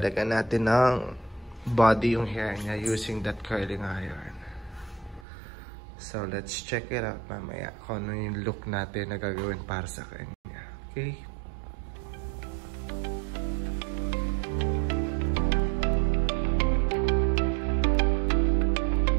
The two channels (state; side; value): drops out; left; at 5.2 s